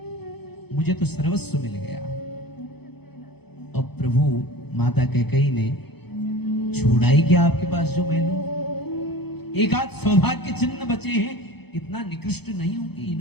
मुझे तो सर्वस्व मिल गया। और प्रभु माता कैकेयी ने छोड़ा ही क्या आपके पास जो मैं लूं? एक आध सौभाग्य चिन्ह बचे हैं, इतना निकृष्ट नहीं हूं कि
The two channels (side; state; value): right; late; 0.98 ms